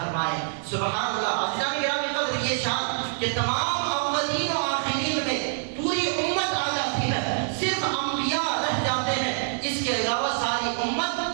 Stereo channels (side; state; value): left; silent; digital silence